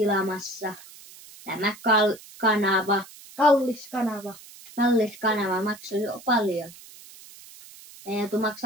tämä kanava. Kallis kanava. Kallis kanava maksaa jo paljon. Meidän joutuu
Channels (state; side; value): noise; right; hiss, 20 dB below the sound